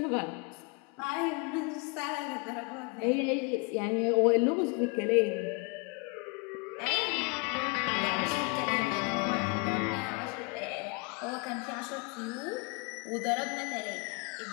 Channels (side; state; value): right; quieter; 30.4 dB